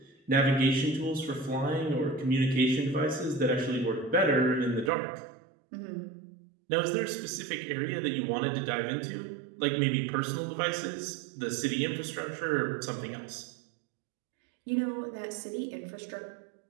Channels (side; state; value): left; drops out; at 4.9 s